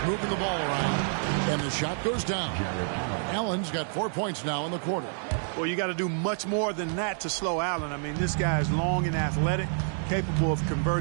moving the ball around. And the shot goes down. Allen's got 4 points now in the quarter. Well, you got to do much more than that to slow Allen. I mean, this guy is long and athletic, capable of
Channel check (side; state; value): left; silent; digital silence